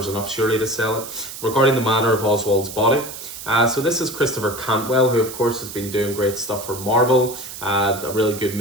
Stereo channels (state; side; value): noise; right; hiss, 11 dB below the sound